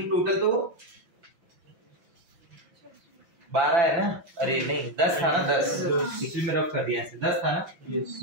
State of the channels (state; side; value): late; left; 5.8 ms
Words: टोटल तो 12 है ना? अरे नहीं 10 था ना? 10 पिछले में रफ कर दिया ऐसे। 10 था ना?